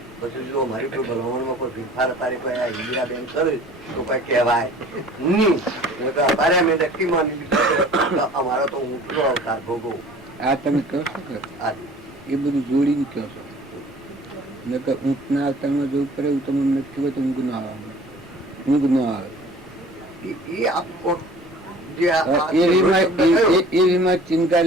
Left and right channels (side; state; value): right; noise; rumble, 27 dB below the sound